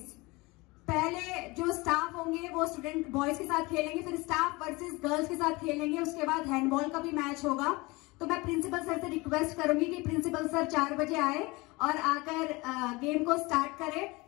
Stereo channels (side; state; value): right; quieter; 23.7 dB